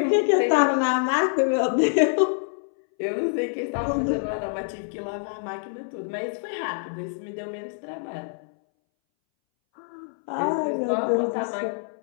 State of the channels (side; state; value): right; silent; 61 dB below the other